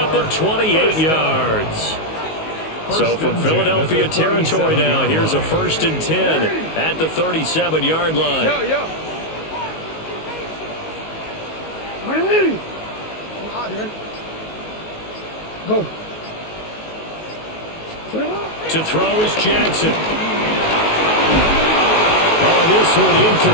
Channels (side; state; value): right; late; 19 ms